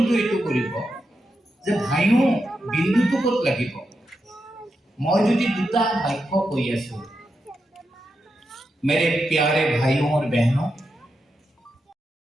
এইটো কৰিব যে ভাইও বিন্দুটো ক'ত লাগিব মই যদি দুটা বাক্য কৈ আছো मेरे प्यारे भाइयों और बहनों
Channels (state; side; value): normal; both; correlation 0.87